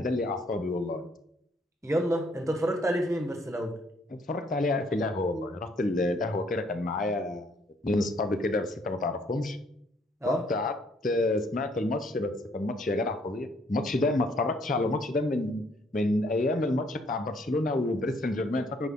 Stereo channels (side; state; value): both; normal; correlation 0.66